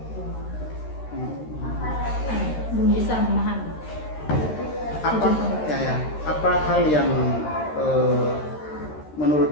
bisa memahami. Apa hal yang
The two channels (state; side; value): late; right; 13 ms